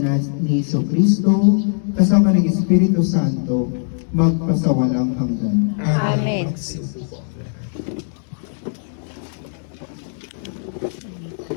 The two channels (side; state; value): right; silent; digital silence